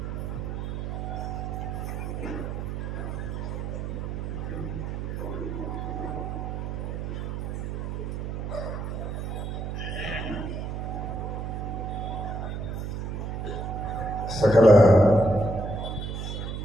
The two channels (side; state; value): right; noise; hum, 4 dB below the sound